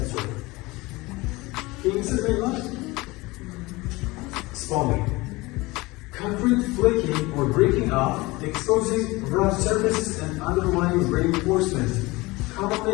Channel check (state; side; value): quieter; right; 22.0 dB